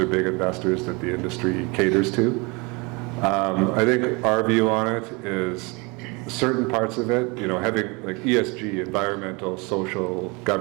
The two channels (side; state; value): left; quieter; 28.1 dB